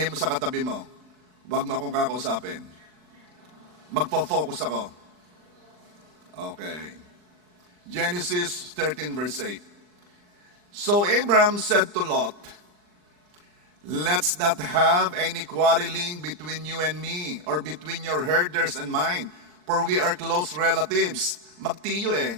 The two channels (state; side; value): late; left; 39 ms